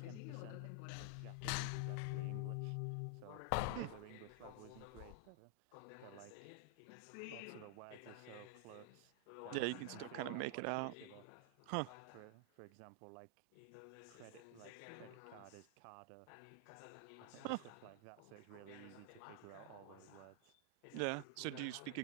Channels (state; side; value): different; both; correlation 0.00